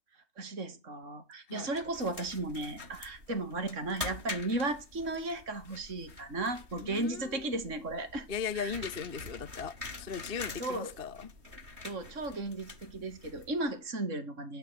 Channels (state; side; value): late; left; 3.2 ms